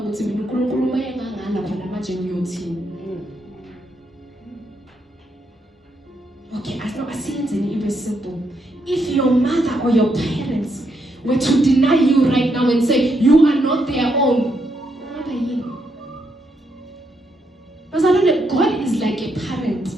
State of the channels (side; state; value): both; normal; correlation 0.78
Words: mina uNkulunkulu mayengangala khona manje ngiyothini. Okay, asiyenzeni ibe simple. If your mother or your parents were to deny you right now and say you are not their own, what are you? Because I know that God is like a parent.